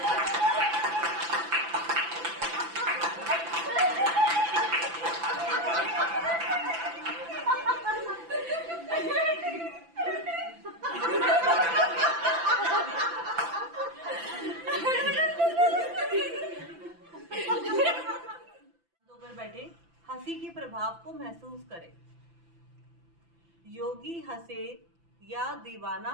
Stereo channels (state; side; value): late; left; 5.9 ms